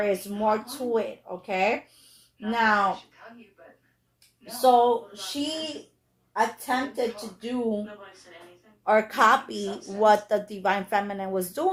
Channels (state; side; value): identical; both; correlation 1.00